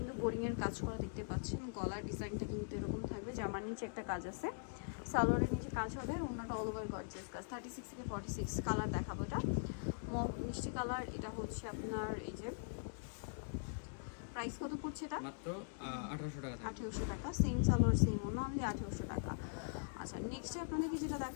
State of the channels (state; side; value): silent; right; digital silence